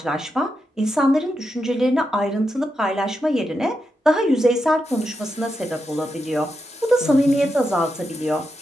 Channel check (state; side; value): normal; both; correlation 0.86